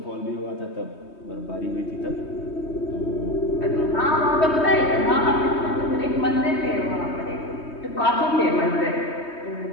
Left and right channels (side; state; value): right; late; 3.2 ms